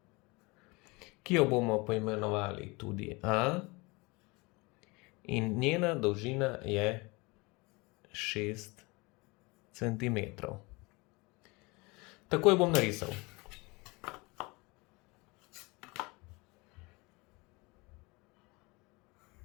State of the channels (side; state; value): right; quieter; 25.8 dB